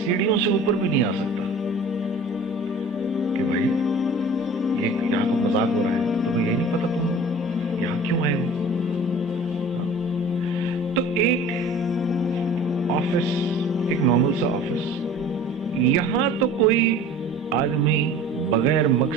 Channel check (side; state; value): both; normal; correlation 0.44